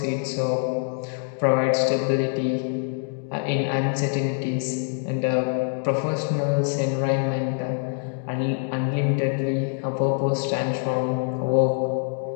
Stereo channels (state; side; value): silent; right; 56 dB below the other